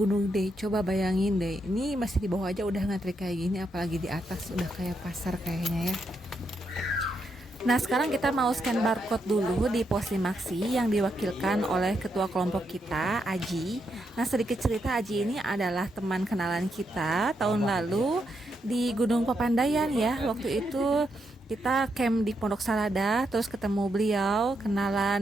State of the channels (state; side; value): normal; both; correlation 0.81